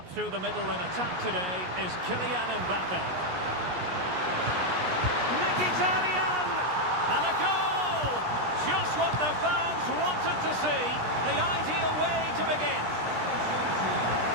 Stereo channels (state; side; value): late; left; 17 ms